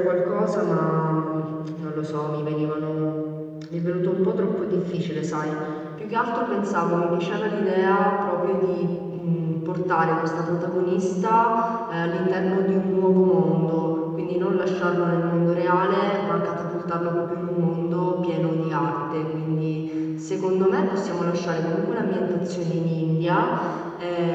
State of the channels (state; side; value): identical; both; correlation 1.00